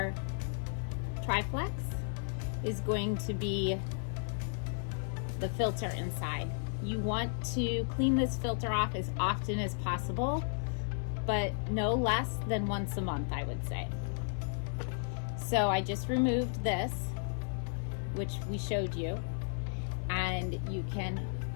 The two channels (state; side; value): silent; right; digital silence